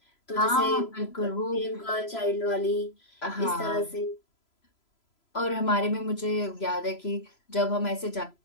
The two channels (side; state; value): right; late; 3.0 ms